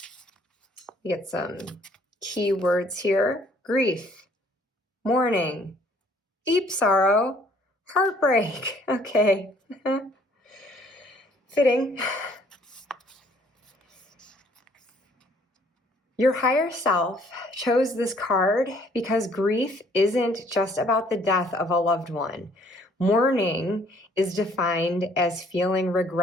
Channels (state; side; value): normal; both; correlation 0.61